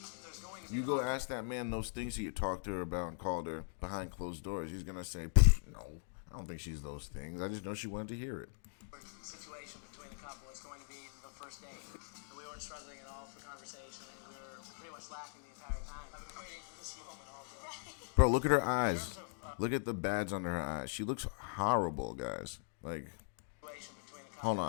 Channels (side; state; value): right; silent; digital silence